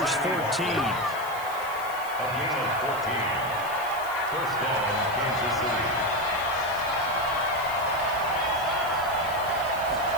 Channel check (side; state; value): left; noise; hiss, 17 dB below the sound